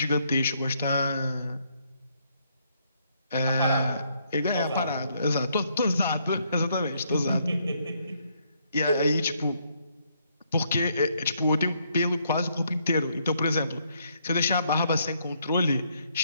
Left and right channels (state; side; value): inverted; both; correlation -0.72